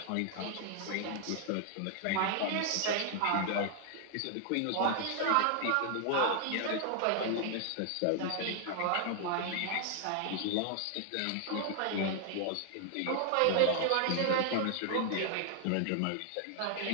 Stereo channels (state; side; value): different; both; correlation 0.00